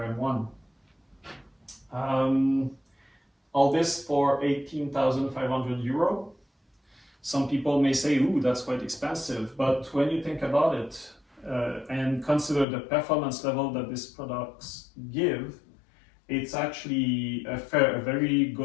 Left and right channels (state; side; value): drops out; right; at 12.7 s